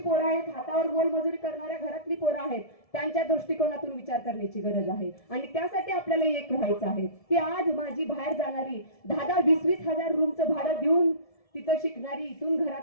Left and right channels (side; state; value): right; late; 1.7 ms